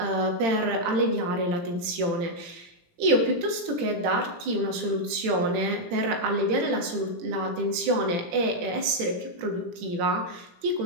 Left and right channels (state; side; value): late; left; 18 ms